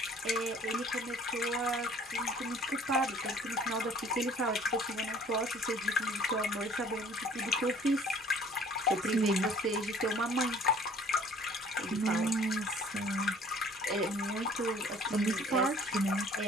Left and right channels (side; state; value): both; normal; correlation 0.54